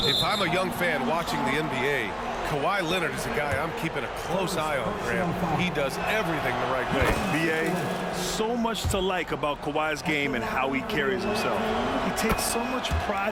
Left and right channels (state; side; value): identical; both; correlation 1.00